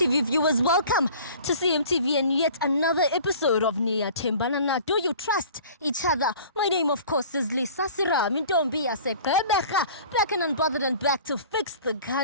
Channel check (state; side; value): inverted; both; correlation -0.45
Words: viewers, welcome to CMTV and yet another episode of Niyathembana Na. Do you trust each other? My name of course is Serame. Back and unbothered and back to fix the